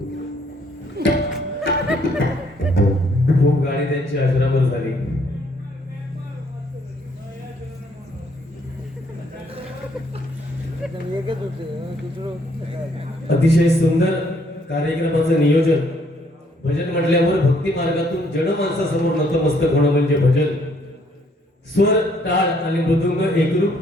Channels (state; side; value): normal; both; correlation 0.67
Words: खूप गाणी त्यांची आश्रमवर झाली. अतिशय सुंदर कार्यक्रमाचं नियोजन. भजन म्हटल्यावर भक्ती मार्गातून जनमानसासमोर नतमस्तक होणं म्हणजे भजन. स्वर टाळ आणि मृदुंग एकरूप